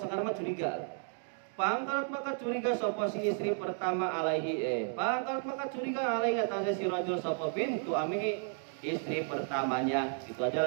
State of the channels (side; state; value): left; silent; 56 dB below the other